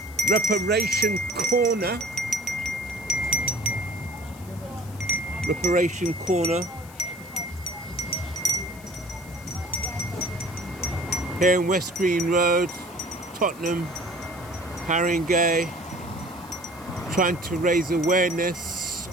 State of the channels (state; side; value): noise; left; hiss, 21 dB below the sound